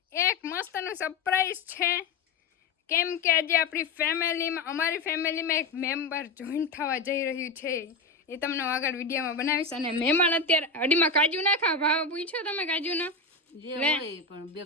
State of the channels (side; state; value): right; quieter; 3.6 dB